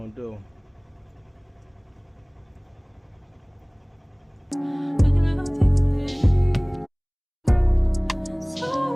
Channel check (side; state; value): both; identical; correlation 1.00